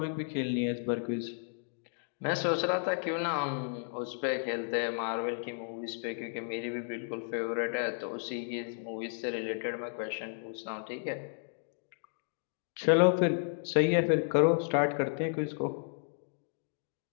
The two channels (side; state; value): right; silent; digital silence